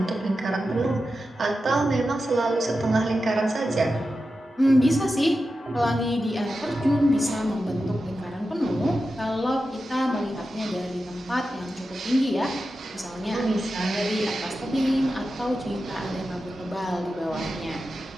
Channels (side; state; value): both; normal; correlation 0.91